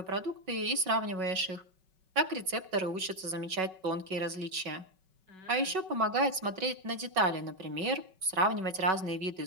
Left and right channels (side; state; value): left; late; 5.3 ms